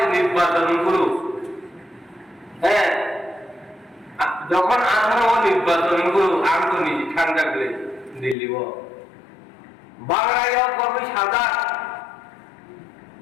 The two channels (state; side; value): drops out; right; at 8.3 s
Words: নির্বাচন গুলো হ্যাঁ যখন আসার হয় নির্বাচন গুলো আমি নিজে ঠান্ডা করে দিল্লি बांग्लादेश कभी सादा